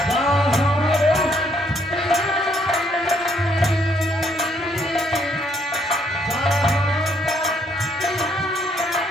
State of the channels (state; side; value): normal; both; correlation 0.69